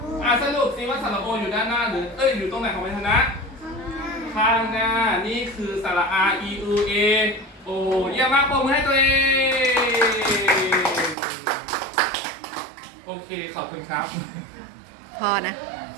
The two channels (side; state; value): left; drops out; at 11.2 s